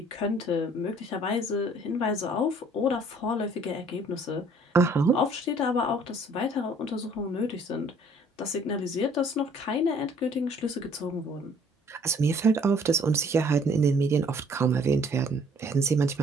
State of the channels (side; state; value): both; normal; correlation 0.58